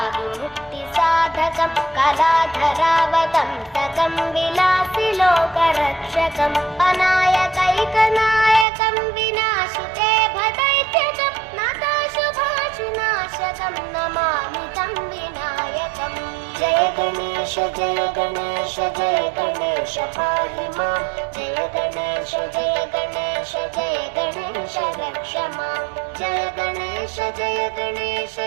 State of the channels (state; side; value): drops out; left; at 8.7 s